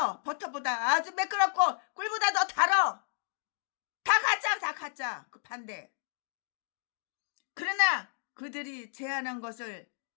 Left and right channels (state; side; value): silent; right; digital silence